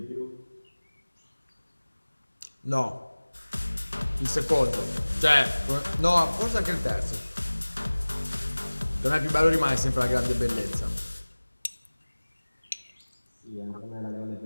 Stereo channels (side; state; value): both; inverted; correlation -1.00